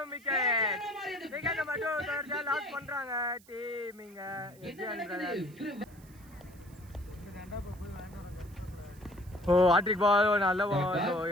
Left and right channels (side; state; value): right; noise; hiss, 26 dB below the sound